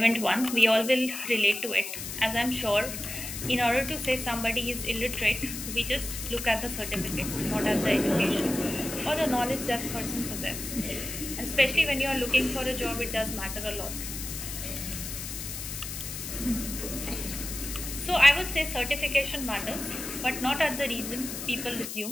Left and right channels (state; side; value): noise; left; hiss, 7 dB below the sound